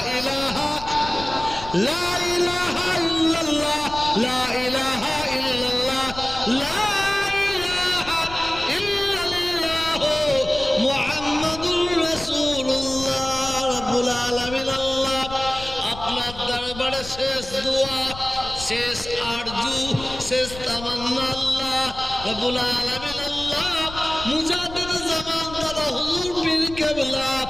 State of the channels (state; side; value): noise; left; rumble, 13 dB below the sound